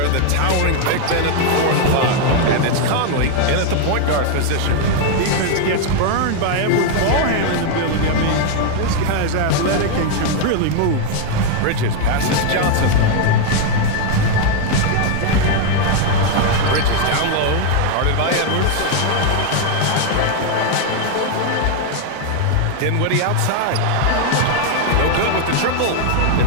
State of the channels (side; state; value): both; different; correlation 0.00